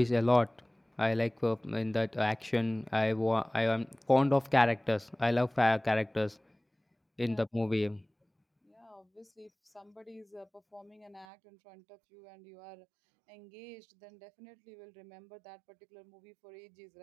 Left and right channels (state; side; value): drops out; left; at 11.2 s